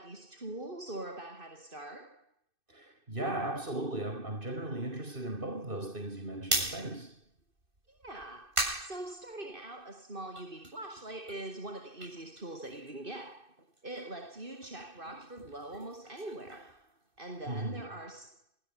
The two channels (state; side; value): late; left; 2.6 ms